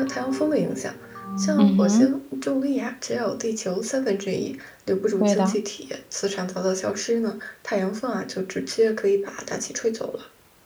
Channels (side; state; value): both; identical; correlation 1.00